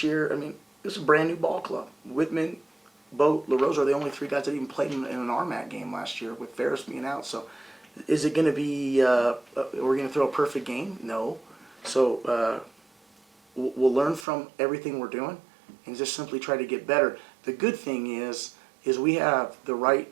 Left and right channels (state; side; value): drops out; left; at 14.2 s